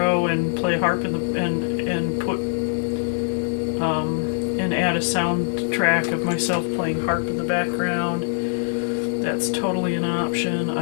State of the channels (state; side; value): silent; right; 63 dB below the other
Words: and play harp and put and add a soundtrack of myself playing harp in the background. That's totally an option.